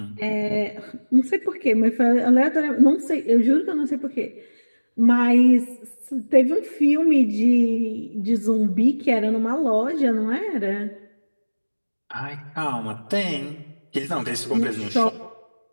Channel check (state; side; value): inverted; both; correlation -1.00